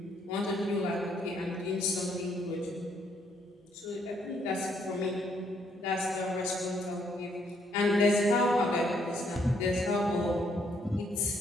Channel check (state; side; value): normal; both; correlation 0.70